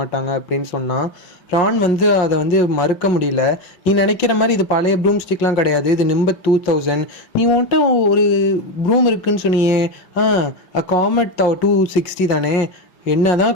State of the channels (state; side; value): late; right; 5.6 ms